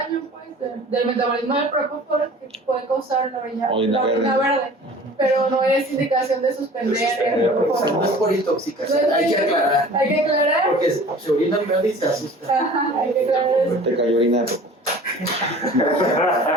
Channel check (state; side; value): normal; both; correlation 0.45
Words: pues, del metabolismo del propofol que puede causar la orina verde, pero no es indicación de suspender el propofol. No es por intoxicación, hay que aclarar. Hay que aclarar. Porque se orina verde y se asusta. Ajá, hay que aclarar eso. Te cayó orina de propofol.